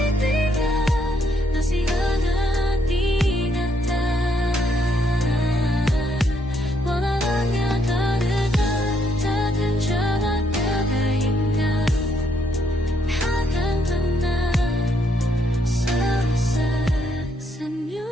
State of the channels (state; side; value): normal; both; correlation 0.73